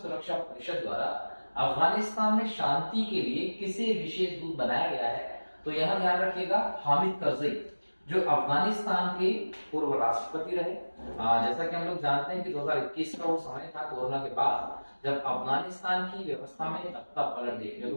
परिषद द्वारा अफगानिस्तान में शांति के लिए किसे विशेष दूत बनाया गया है? तो यहाँ ध्यान रखिएगा, हामिद करजई, जो अफगानिस्तान के पूर्व राष्ट्रपति रहे। जैसा कि हम लोग जानते हैं कि 2021 का वो समय था कोरोना के बाद, जब अफगानिस्तान की व्यवस्था में तख्ता पलट देखने को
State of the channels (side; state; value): both; inverted; correlation -1.00